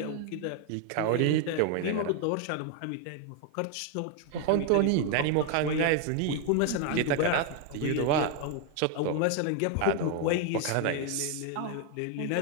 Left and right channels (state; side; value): different; both; correlation 0.01